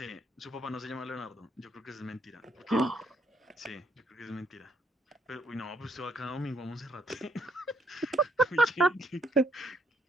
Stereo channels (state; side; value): normal; both; correlation 0.71